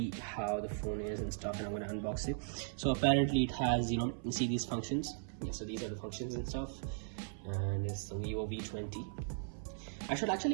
how the phone is and stuff, and I'm gonna unbox it. So apparently it has, you see these functions. Yeah, so these are the functions and stuff, and it's the VIVO V20. I should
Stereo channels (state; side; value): silent; left; 53 dB below the other